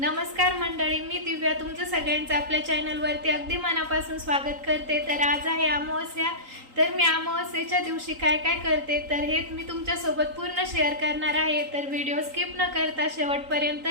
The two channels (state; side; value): late; left; 3.8 ms